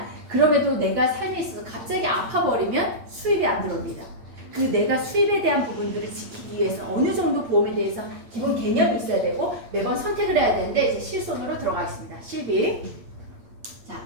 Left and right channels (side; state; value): left; late; 8.8 ms